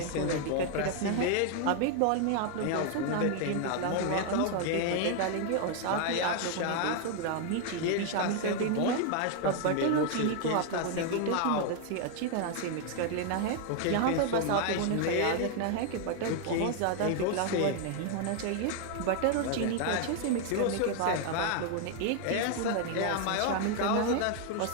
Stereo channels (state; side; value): different; both; correlation 0.00